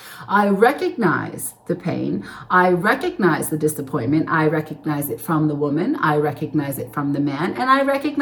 I recognize the pain. I recognize the disappointment. I recognize it from the woman. I recognize it from the man. And I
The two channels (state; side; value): identical; both; correlation 1.00